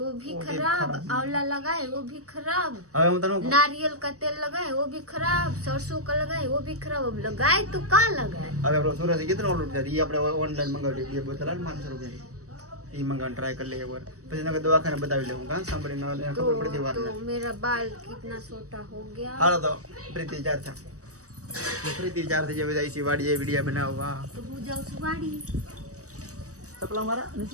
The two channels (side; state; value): left; late; 0.66 ms